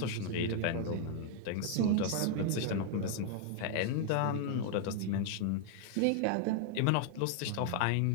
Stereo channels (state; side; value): different; both; correlation 0.00